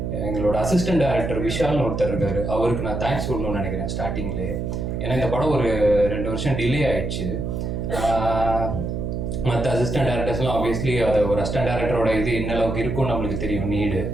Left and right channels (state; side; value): noise; right; hum, 3 dB below the sound